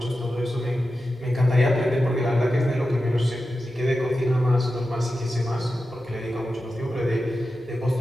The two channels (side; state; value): both; normal; correlation 0.91